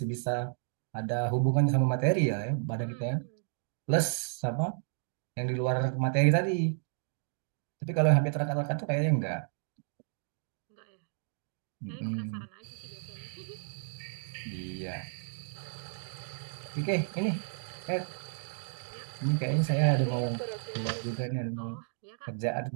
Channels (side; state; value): left; silent; digital silence